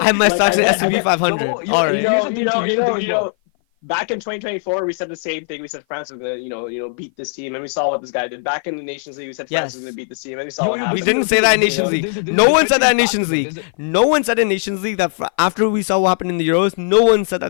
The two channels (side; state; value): right; silent; 56 dB below the other